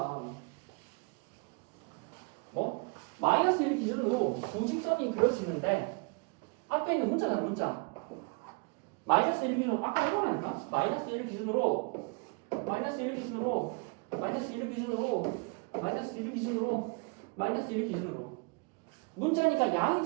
뭐? 마이너스 1 기준으로 두 직선이 그려지는데 앞에 있는 문자잖아 문자 마이너스 1 기준으로 아까 이거라니까 마이너스 1 기준으로 마이너스 1 기준으로 마이너스 1 기준으로 마이너스 1 기준으로 마이너스 1 기준으로 문자니까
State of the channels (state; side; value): quieter; left; 33.0 dB